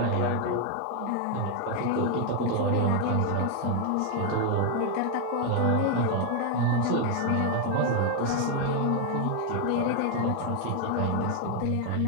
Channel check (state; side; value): different; both; correlation 0.01